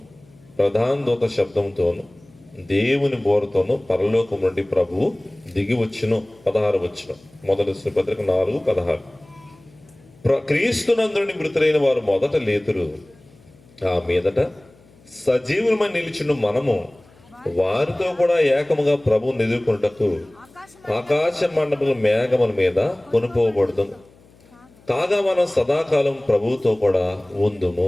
ప్రధాన దూత శబ్దంతోను, దేవుని బోరతోను పరలోకం నుండి ప్రభువు దిగి వచ్చును. 16వ వచనం, మొదటి దర్శన పత్రిక 4:16. క్రీస్తునందుని మృతులైన వారు మొదట లేతురు, ఆ మీదట సజీవులమని నిలిచిన మనము వారితో కూడా ఏకముగా ప్రభువుని ఎదుర్కొనుటకు ఆకాశ మండపముల మేఘముల మీద కొనుకోబడదు. కాగా మనం సదాకాలం ప్రభువుతో కూడా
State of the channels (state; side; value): noise; left; hum, 28 dB below the sound